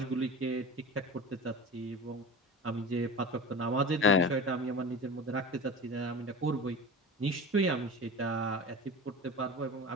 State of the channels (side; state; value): both; normal; correlation 0.32